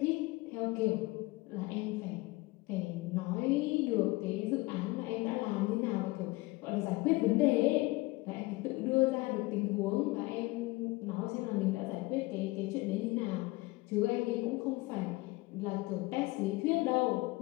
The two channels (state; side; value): quieter; right; 22.1 dB